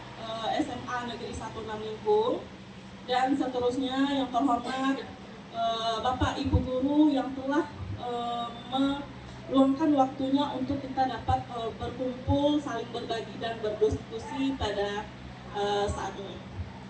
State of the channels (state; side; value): identical; both; correlation 1.00